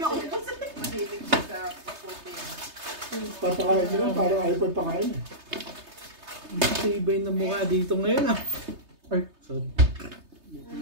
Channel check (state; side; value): late; left; 3.3 ms